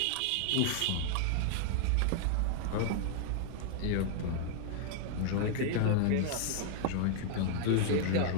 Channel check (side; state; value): both; different; correlation 0.00